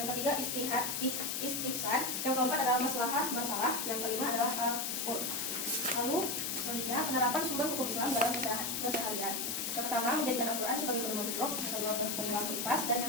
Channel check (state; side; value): noise; left; hiss, 1 dB below the sound